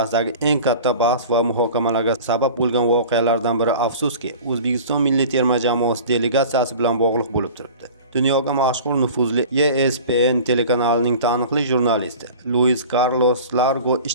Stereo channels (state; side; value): inverted; both; correlation -0.40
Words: eng katta bahs va muhokamalarga sabab bo'lgan voqealardan biri afsuski O'zbekiston milliy terma jamoasi delegatsiyasi bilan bog'liq bo'lib turibdi. Dunyoga mashhur nufuzli ESPN telekanalining taniqli jurnalisti Luis Carlos Largo